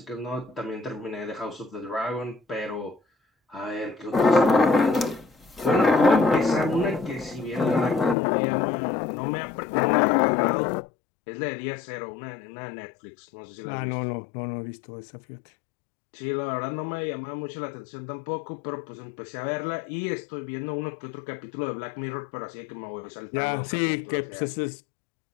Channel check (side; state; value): right; drops out; at 8.2 s